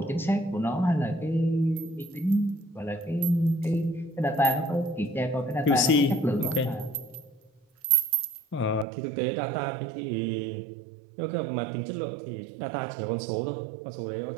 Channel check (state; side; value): drops out; left; at 8.8 s